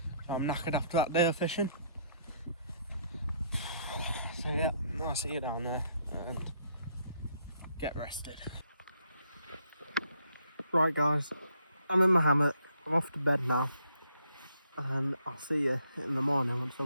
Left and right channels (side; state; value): both; inverted; correlation -0.70